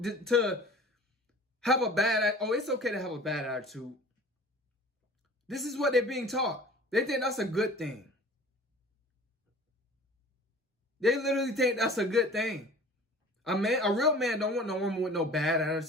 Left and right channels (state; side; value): normal; both; correlation 0.45